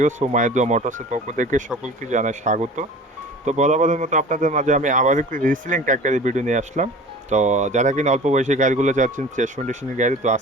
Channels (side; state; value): both; normal; correlation 0.41